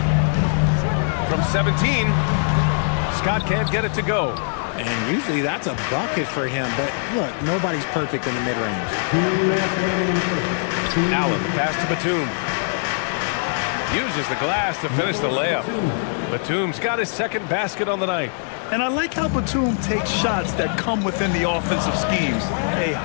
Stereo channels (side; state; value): right; silent; digital silence